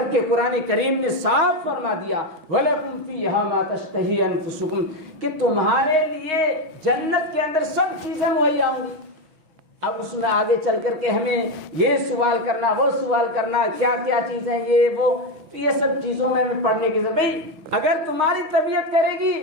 قرآن کریم نے صاف فرما دیا وَلَكُمْ فِيهَا مَا تَشْتَهِي أَنفُسُكُمْ، کہ تمہارے لیے جنت کے اندر سب چیزیں مہیا ہوں گی۔ اب اس میں آگے چل کر کے ہمیں یہ سوال کرنا، وہ سوال کرنا، کیا کیا چیزیں یہ سب چیزوں میں ہمیں پڑھنے کی ضرورت۔ بھائی اگر تمہاری طبیعت کرے گی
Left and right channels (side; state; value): left; late; 6.4 ms